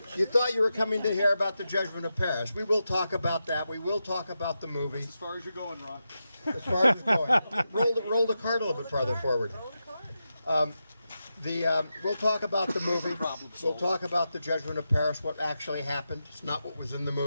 You thought you were coming to hear about the Judgment of Paris. We will talk about that. We will talk about the movie. As far as you're going, Ron. As far as you're going. Roll the card a little bit farther forward. We'll talk about the movie. We'll talk about the Judgment of Paris, what actually happened. It's not what was in the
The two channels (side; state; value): both; inverted; correlation -0.89